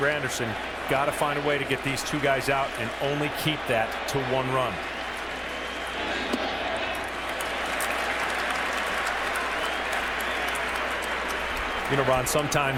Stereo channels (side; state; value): both; identical; correlation 1.00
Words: Granderson. Got to find a way to get these 2 guys out and only keep that to 1 run. You know, Ron,